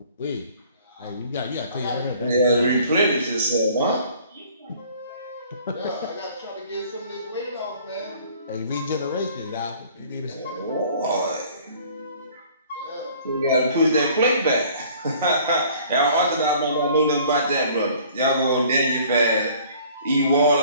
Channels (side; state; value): both; inverted; correlation -0.53